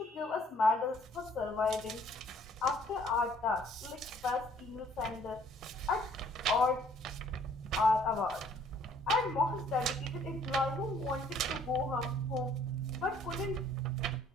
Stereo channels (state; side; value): normal; both; correlation 0.60